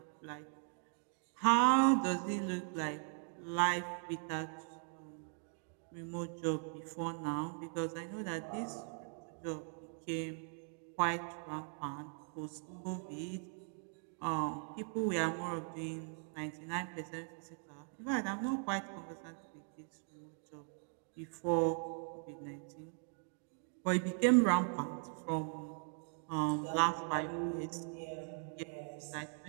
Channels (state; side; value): silent; left; 51 dB below the other